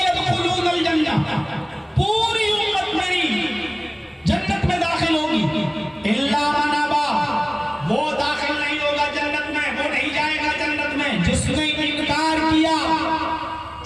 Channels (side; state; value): both; identical; correlation 1.00